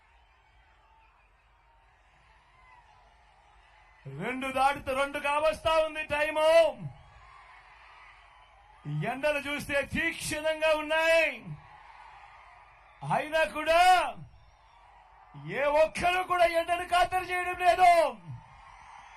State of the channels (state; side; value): identical; both; correlation 1.00